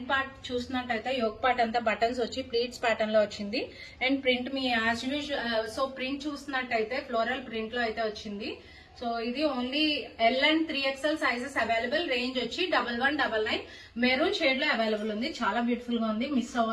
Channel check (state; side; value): identical; both; correlation 1.00